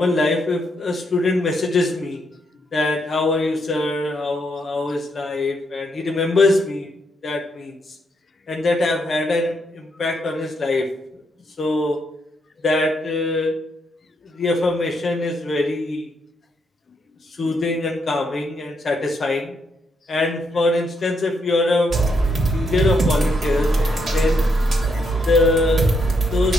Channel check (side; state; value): both; normal; correlation 0.77